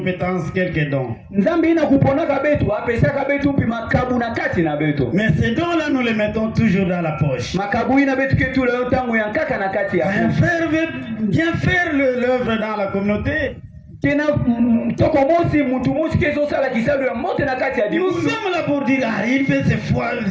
quelques dons. Nzambi ina kuponaka betu, apesaka betu pi makabu na kati na betu. Mais ces dons-là, nous les mettons toujours dans la poche. Makabu ina betu ketu leo tangu yankaka na kati ya. Bien faire l'œuvre dans la communauté. Tena toko mosi mutu mosi kezo sala kisalu ya mote na kati ya dibu. Nous sommes là pour dire, il fait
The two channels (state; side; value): identical; both; correlation 1.00